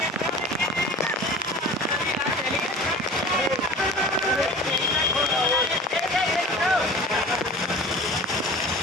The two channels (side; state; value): both; normal; correlation 0.39